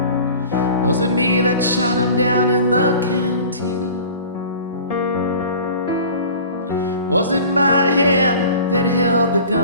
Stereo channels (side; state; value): both; inverted; correlation -0.42